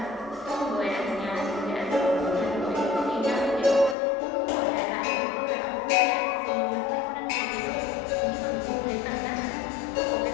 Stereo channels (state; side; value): drops out; right; at 4.0 s